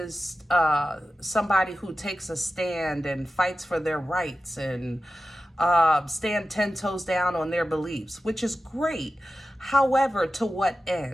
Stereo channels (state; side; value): normal; both; correlation 0.93